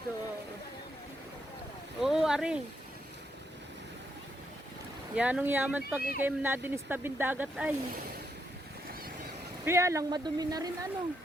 Oo, ari. Yanong yaman pag ikay nadinis tabing dagat ay. Kaya lang madumi na rin ano.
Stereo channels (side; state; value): both; normal; correlation 0.78